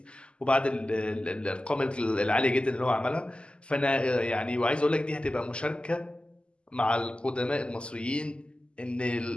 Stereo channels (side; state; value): right; late; 0.052 ms